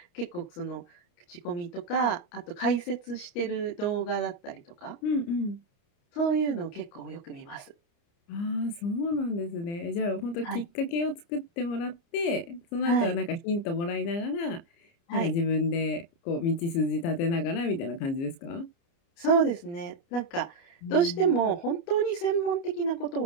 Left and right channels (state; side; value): late; right; 30 ms